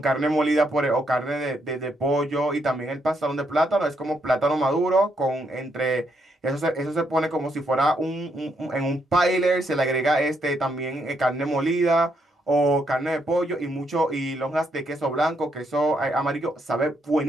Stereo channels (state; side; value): normal; both; correlation 0.76